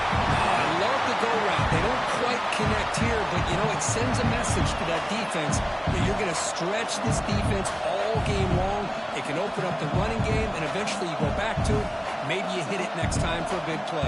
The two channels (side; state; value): both; identical; correlation 1.00